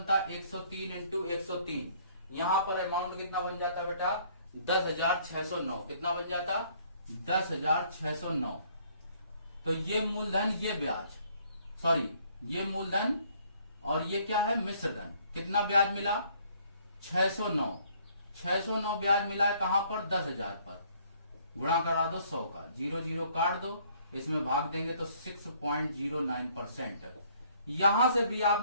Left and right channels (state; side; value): inverted; both; correlation -0.62